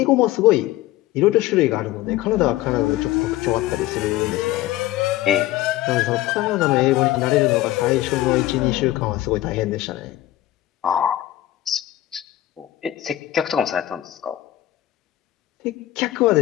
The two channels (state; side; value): quieter; right; 15.0 dB